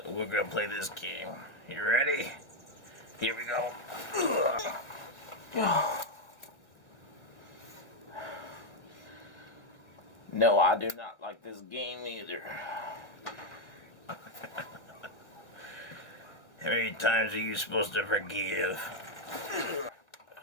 we're gonna play this game. You ready? Here we go. No, I do not like this game either. How many times are you supposed to forgive?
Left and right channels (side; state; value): right; late; 1.7 ms